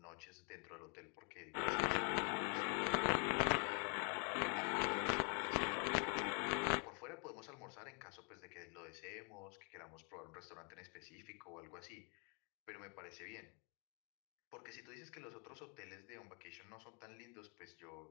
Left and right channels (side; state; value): right; quieter; 39.1 dB